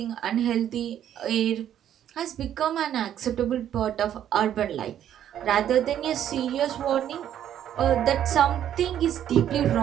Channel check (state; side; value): quieter; left; 10.5 dB